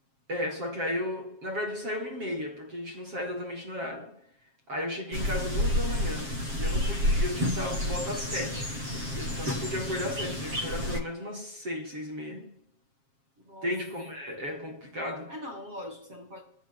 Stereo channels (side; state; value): left; late; 7.4 ms